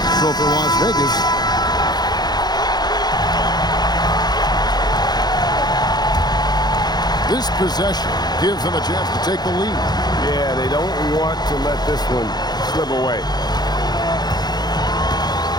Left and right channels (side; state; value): right; late; 0.20 ms